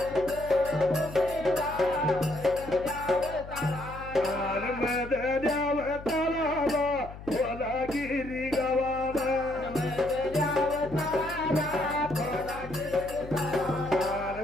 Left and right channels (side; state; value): left; noise; hum, 14 dB below the sound